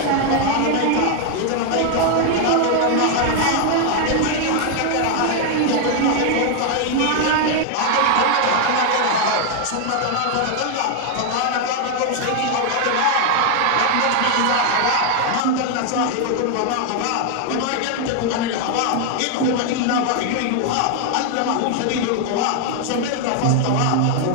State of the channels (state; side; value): different; both; correlation 0.00